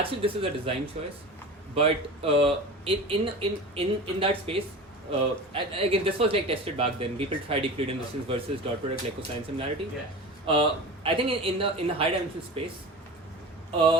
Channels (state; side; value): normal; both; correlation 0.33